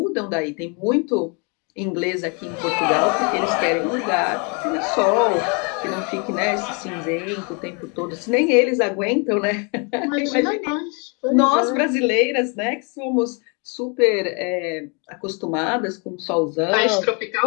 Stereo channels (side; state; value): right; quieter; 34.3 dB